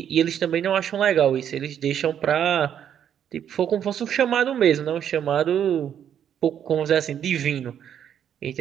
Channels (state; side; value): quieter; left; 9.3 dB